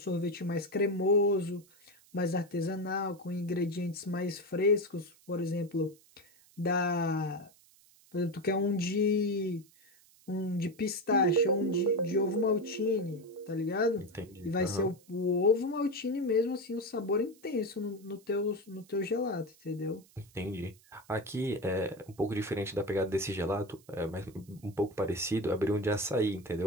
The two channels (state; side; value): noise; right; hiss, 28 dB below the sound